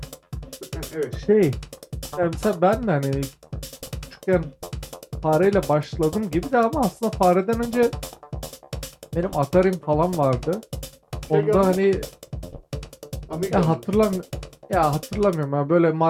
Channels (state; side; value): identical; both; correlation 1.00